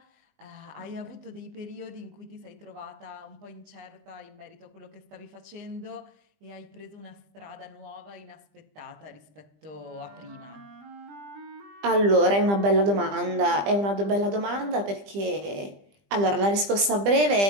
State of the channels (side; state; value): left; late; 20 ms